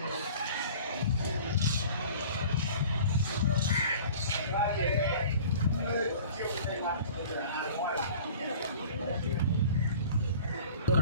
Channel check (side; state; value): both; inverted; correlation -0.44